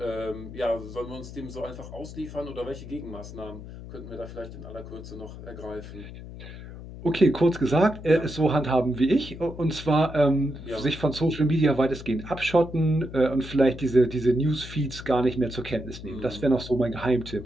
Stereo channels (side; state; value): left; noise; hum, 13 dB below the sound